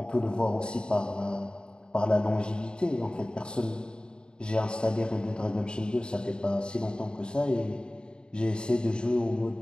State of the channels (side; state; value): right; late; 0.050 ms